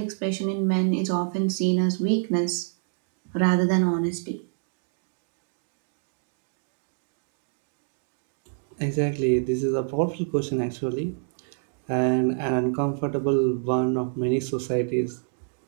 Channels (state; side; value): silent; left; digital silence